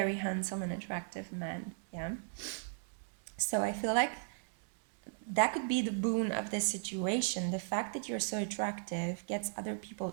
handsome and attractive men. Yeah. So I feel like that could be the boon of this situation. The fact that you're so attractive gets other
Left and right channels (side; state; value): left; silent; digital silence